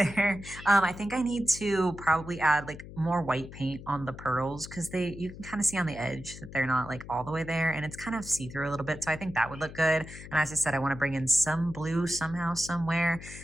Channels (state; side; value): noise; left; hum, 14 dB below the sound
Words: I think I need to probably add like more white paint on the pearls because they you can kind of see on the edge that they're not like all the way there and it's kind of see-through a little bit. So I think that would look good. And as I said, I want to bring in some blue somehow, somewhere.